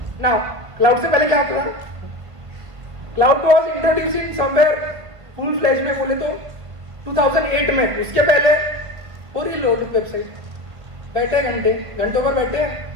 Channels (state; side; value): late; left; 1.5 ms